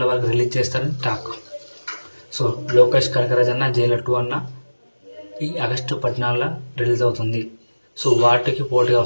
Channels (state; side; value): inverted; both; correlation -1.00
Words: వరకు రిలీజ్ చేస్తారని టాక్. సో లోకేష్ కనకరాజ్ అన్న జైలర్ 2 అన్న ఈ ఆగస్టు 14లో రిలీజ్ అవుతుంది. సో వాటికి పోటీగా